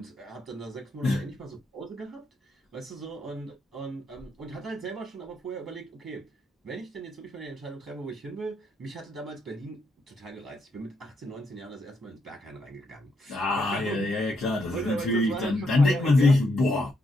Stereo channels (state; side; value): normal; both; correlation 0.78